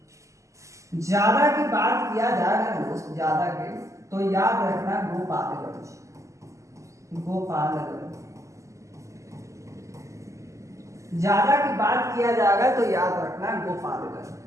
ज्यादा की बात किया जाएगा ना दोस्त, ज्यादा के तो याद रखना गोपालगंज, गोपालगंज। ज्यादा की बात किया जाएगा तो याद रखना गोपालगंज।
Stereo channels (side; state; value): left; late; 0.15 ms